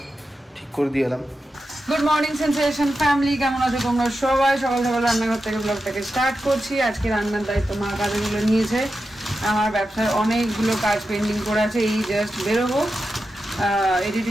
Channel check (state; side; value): normal; both; correlation 0.90